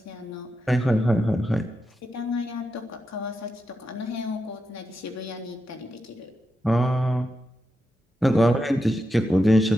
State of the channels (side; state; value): both; normal; correlation 0.87